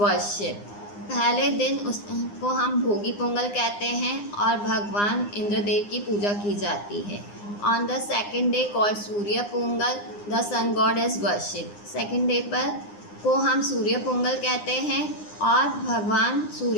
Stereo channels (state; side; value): late; right; 9.8 ms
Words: पहले दिन उसको हम भोगी पोंगल कहते हैं और भगवान इंद्रदेव की पूजा की जाती है। On the second day called Surya Pongal the sun god is worship. Second day पर को हम सूर्य पोंगल कहते हैं और भगवान